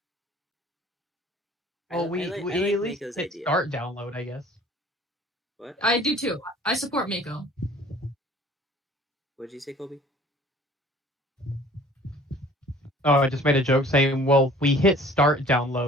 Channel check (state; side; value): normal; both; correlation 0.51